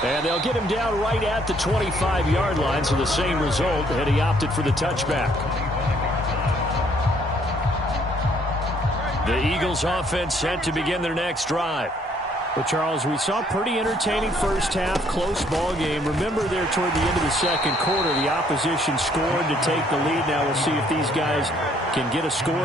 And they'll get him down right at the 25-yard line, so the same result, and he opted for the touchback. The Eagles offense set to begin their next drive. Well, Charles, we saw pretty entertaining first half, close ball game. Remember there toward the end of the second quarter, the opposition scored to take the lead. Now we'll see if these guys can get a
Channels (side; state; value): both; normal; correlation 0.65